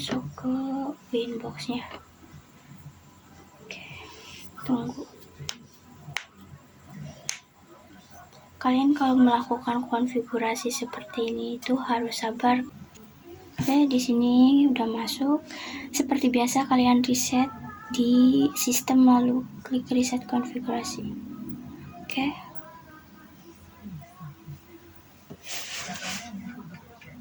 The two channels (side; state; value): both; identical; correlation 1.00